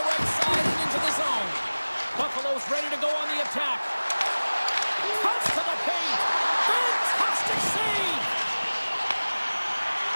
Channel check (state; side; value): inverted; both; correlation -1.00